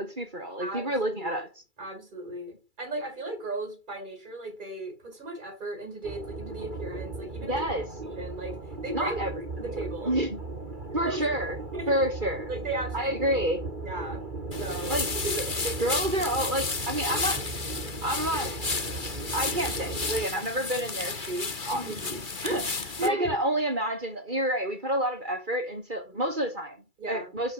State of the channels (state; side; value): late; left; 2.3 ms